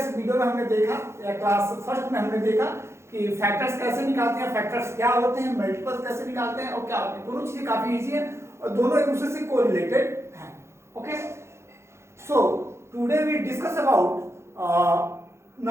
video में हमने देखा या क्लास फर्स्ट में हमने देखा कि फैक्टर्स कैसे निकालते हैं, फैक्टर्स क्या होते हैं, मल्टीपल्स कैसे निकालते हैं और क्या होते हैं। दोनों चीजें काफी इजी हैं और दोनों एक दूसरे से कोरिलेटेड हैं। Okay, so today we discuss about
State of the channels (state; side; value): late; left; 0.13 ms